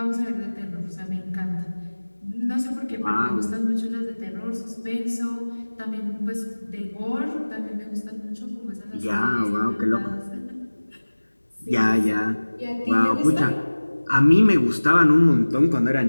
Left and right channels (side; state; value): both; inverted; correlation -1.00